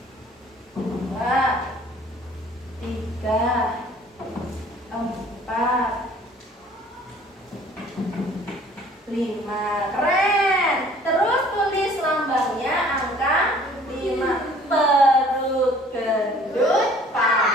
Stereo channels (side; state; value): both; normal; correlation 0.53